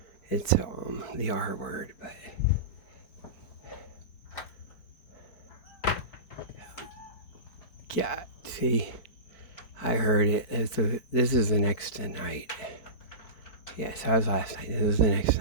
it's the R word, but yeah, see, I heard it. This is the next night. Yes, that was last night. This is the next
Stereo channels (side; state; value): right; late; 4.6 ms